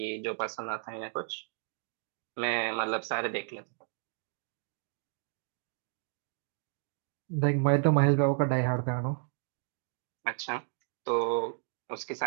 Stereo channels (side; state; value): left; silent; digital silence